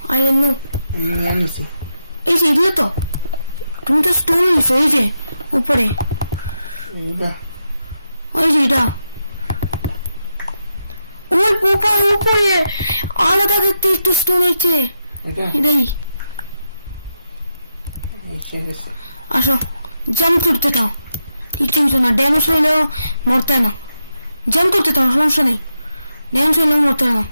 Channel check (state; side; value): inverted; both; correlation -0.86